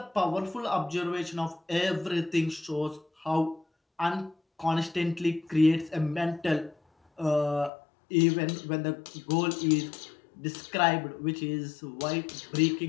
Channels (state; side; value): drops out; right; at 7.7 s